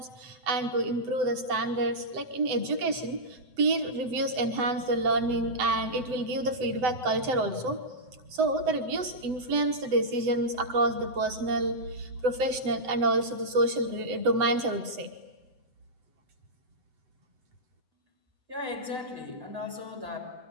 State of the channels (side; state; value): left; late; 7.9 ms